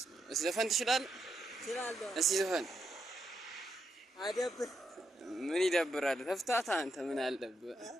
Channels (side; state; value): both; normal; correlation 0.82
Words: አብ። እስኪ ዘፈን ትችላለህ? እችላለሁ። እስኪ ዘፈን። አይደብር። ምን ይደብራል? ተፍታታ አንተ ምን አለብህ?